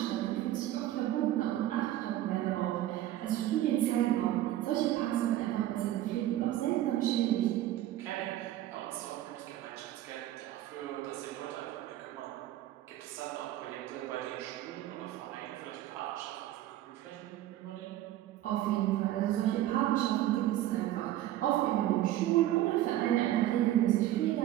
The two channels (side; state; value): left; quieter; 13.9 dB